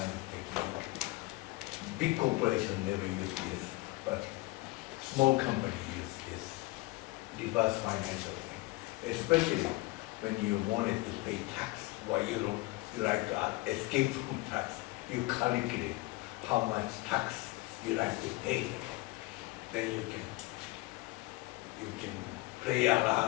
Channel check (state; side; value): quieter; right; 21.6 dB